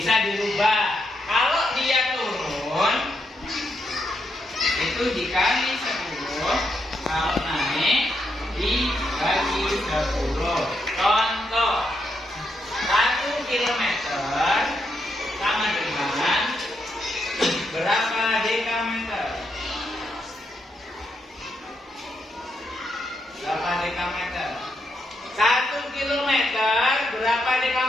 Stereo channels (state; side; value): normal; both; correlation 0.81